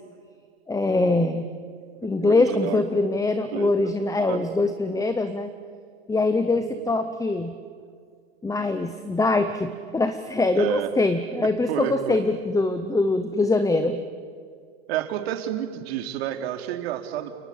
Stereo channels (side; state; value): both; normal; correlation 0.71